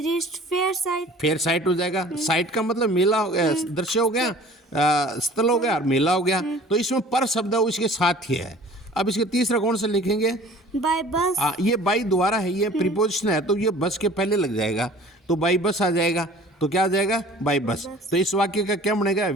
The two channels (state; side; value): normal; both; correlation 0.47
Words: reached fair site, fair site हो जाएगा। साइट का मतलब मेला हो गया, दृश्य हो गया, स्थल हो गया और मेला हो गया। तो इसमें पर शब्द है वो इसके साथ ही है। अब इसके तीसरा कौन सा लिखेंगे, बाय बस। ये बाई द्वारा है, ये प्रीपोजिशन है तो ये बस के पहले लग जाएगा तो बाई बस आ जाएगा, तो क्या आ जाएगा, बाई बस। तो इस वाक्य का क्या बनेगा,